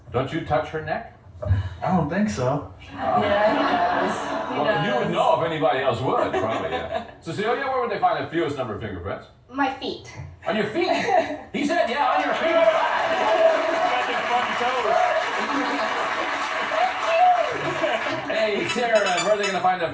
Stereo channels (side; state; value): both; identical; correlation 1.00